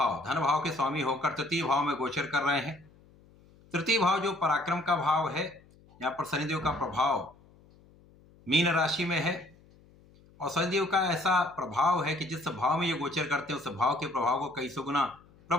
धन भाव के स्वामी होकर तृतीय भाव में गोचर कर रहे हैं। तृतीय भाव जो पराक्रम का भाव है, यहाँ पर शनिदेव का प्रभाव मीन राशि में है और शनिदेव का ऐसा प्रभाव है कि जिस भाव में ये गोचर करते हैं उस भाव के प्रभाव को कई सौ गुना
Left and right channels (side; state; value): left; noise; hum, 27 dB below the sound